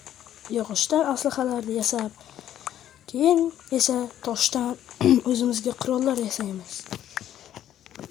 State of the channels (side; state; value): right; quieter; 11.4 dB